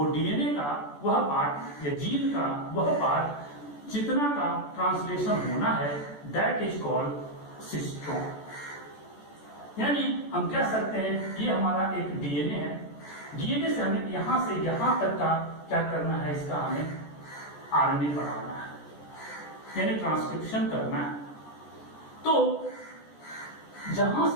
डीएनए का वह पार्ट या जीन का वह पार्ट जितना का ट्रांसलेशन होना है दैट इज कॉल्ड सिस्ट्रॉन। यानी हम कह सकते हैं ये हमारा एक डीएनए है, डीएनए से हमें यहां से यहां तक का क्या करना है, इसका हमें आरएनए बनाना है, यानी ट्रांसक्रिप्शन करना है। तो जहां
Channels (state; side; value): late; right; 14 ms